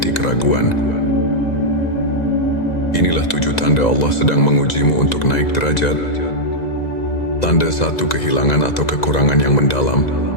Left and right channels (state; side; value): late; right; 2.0 ms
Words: keraguan. Inilah 7 tanda Allah sedang mengujimu untuk naik derajat. Tanda 1, kehilangan atau kekurangan yang mendalam.